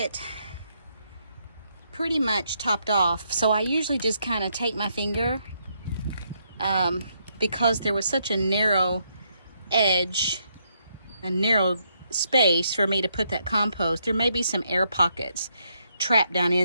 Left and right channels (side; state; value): both; inverted; correlation -0.76